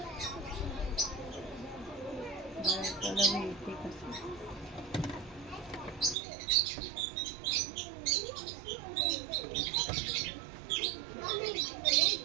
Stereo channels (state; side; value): drops out; left; at 6.2 s